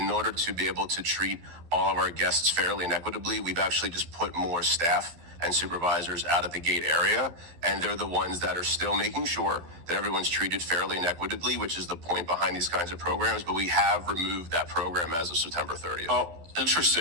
order to be able to treat all of our guests fairly and equitably, we've actually just put more staff and supervisors out at the gate area. And they're the ones that are still making sure that everyone's treated fairly and equitably, which is the point behind these kinds of programs. But we have removed that program as of September 30th. Oh,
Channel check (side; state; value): left; late; 12 ms